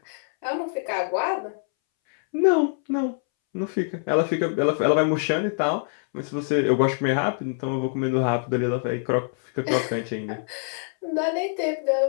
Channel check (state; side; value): silent; right; 62 dB below the other